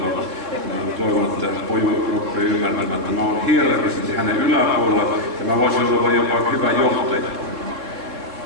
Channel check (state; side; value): late; left; 3.7 ms